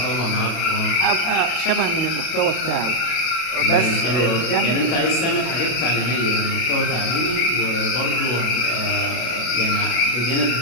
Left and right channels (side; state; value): right; late; 33 ms